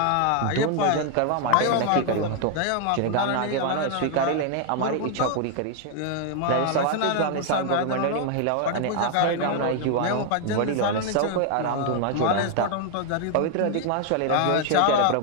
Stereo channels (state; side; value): different; both; correlation 0.00